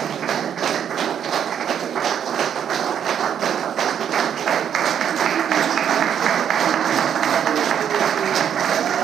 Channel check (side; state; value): left; quieter; 8.8 dB